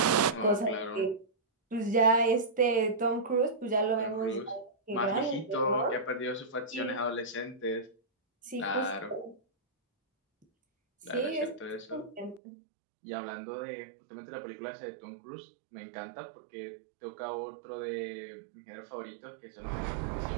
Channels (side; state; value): left; drops out; at 12.4 s